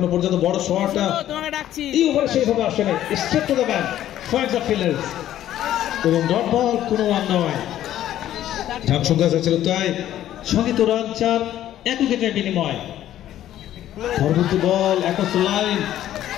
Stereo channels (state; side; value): quieter; right; 12.4 dB